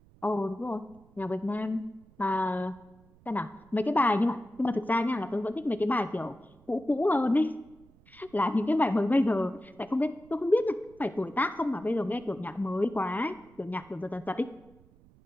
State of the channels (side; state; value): right; noise; rumble, 27 dB below the sound